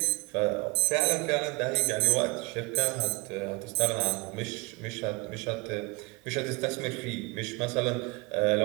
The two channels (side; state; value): left; quieter; 26.8 dB